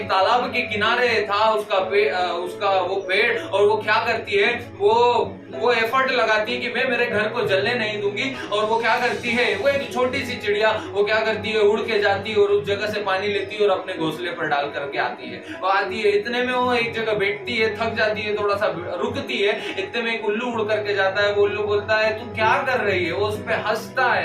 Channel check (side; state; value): both; identical; correlation 1.00